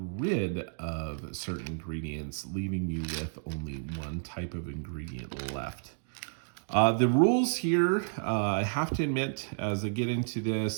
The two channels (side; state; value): left; silent; digital silence